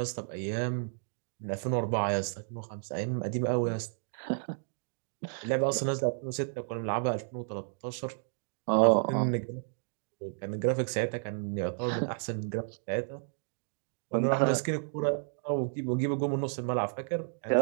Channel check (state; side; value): silent; left; digital silence